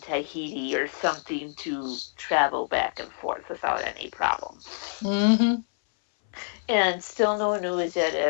or something to travel back and forth without any problem. Mm-hmm. And still no news yet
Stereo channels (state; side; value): silent; right; 59 dB below the other